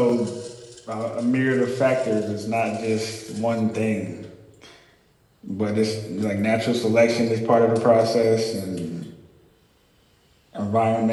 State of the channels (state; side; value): identical; both; correlation 1.00